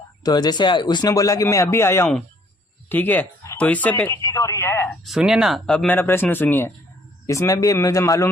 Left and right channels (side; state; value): both; normal; correlation 0.62